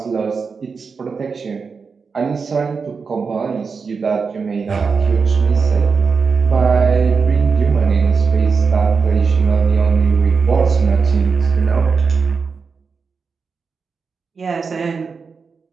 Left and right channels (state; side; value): quieter; left; 5.2 dB